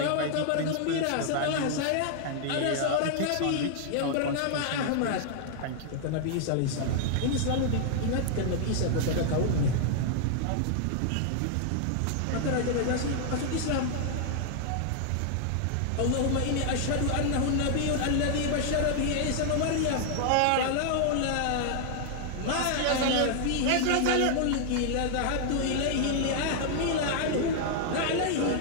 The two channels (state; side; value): different; both; correlation 0.00